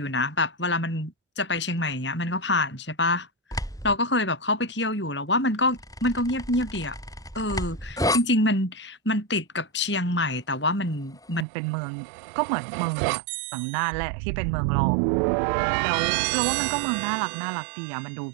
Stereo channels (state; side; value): drops out; left; at 11.5 s